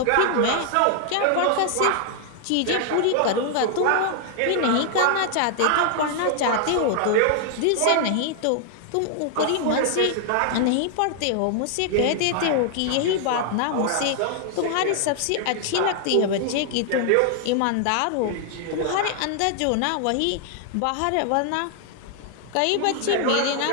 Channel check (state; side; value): different; both; correlation 0.00